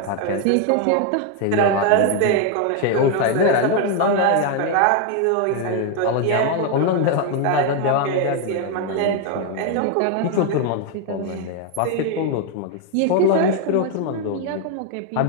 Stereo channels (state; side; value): different; both; correlation 0.01